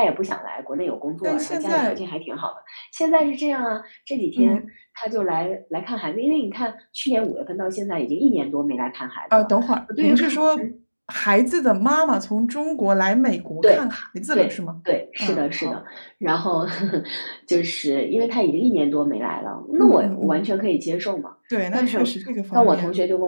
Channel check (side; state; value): both; inverted; correlation -1.00